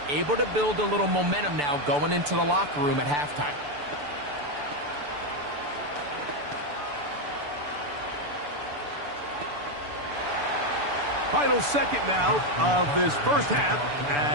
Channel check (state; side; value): late; left; 6.9 ms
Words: able to build a little momentum now going into the locker room at halftime. Final 2nd now of this 1st half